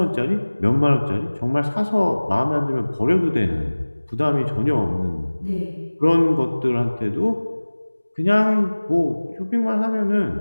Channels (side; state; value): both; inverted; correlation -1.00